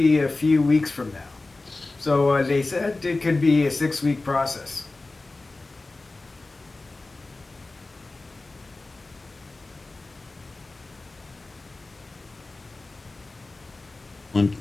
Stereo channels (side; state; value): right; quieter; 3.3 dB